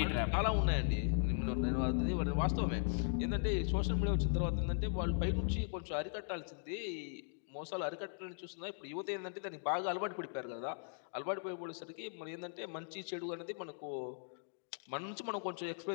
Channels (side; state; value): right; silent; digital silence